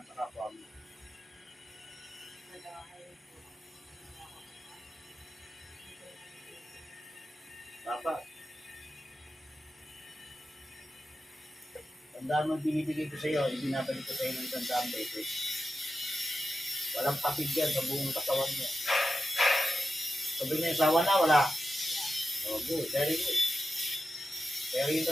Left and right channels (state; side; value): normal; both; correlation 0.90